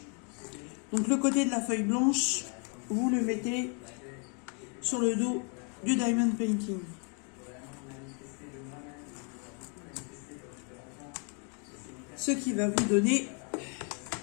Donc, le côté de la feuille blanche, vous le mettez sur le dos du diamond painting. Ce qui va vous donner...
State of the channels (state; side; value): quieter; right; 38.6 dB